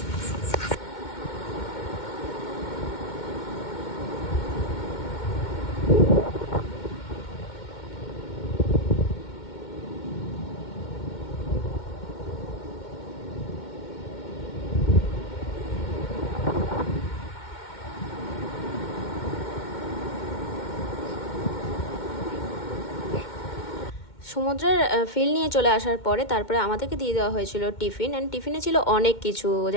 সমুদ্রের ফিল নিয়ে চলে আসার পরে তারপরে আমাদেরকে দিয়ে দেওয়া হয়েছিল টিফিন। অ্যান্ড টিফিনে ছিল অনেক কিছু,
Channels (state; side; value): late; right; 2.1 ms